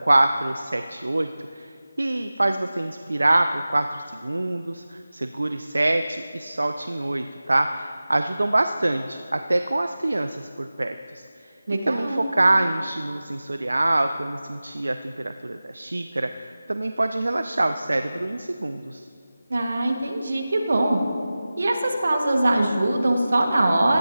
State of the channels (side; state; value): both; inverted; correlation -0.97